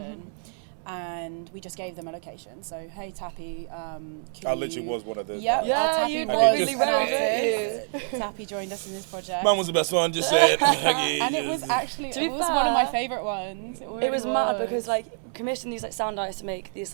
and we just gave them a location. So, hey, Tappy, I literally was one of those. Yep, guys. Yeah, Tappy you was really an wrote artist. it. Tappy joined us in this project. Man was the best one, just say it. And it was actually, To be it was one of my fair, favourite ones. It, It really was mad because like commissioned these like sound artists to make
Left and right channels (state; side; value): silent; left; 60 dB below the other